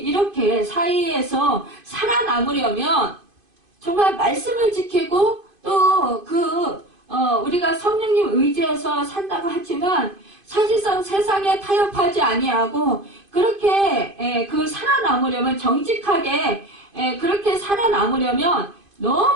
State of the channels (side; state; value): left; late; 2.5 ms